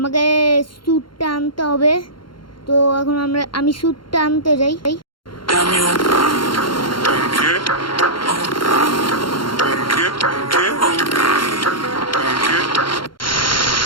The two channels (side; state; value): right; late; 0.72 ms